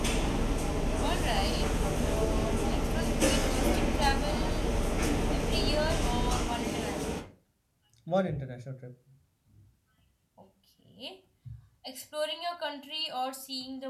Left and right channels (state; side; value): identical; both; correlation 1.00